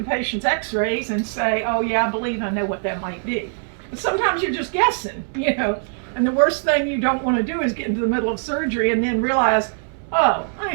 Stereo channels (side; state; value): left; silent; digital silence